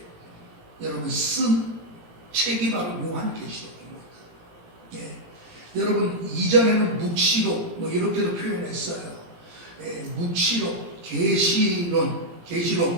여러분 쓴 책이 바로 요한계시록입니다. 여러분 이전에는 묵시록 이렇게도 표현했어요. 묵시록, 계시론,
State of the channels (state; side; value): late; left; 17 ms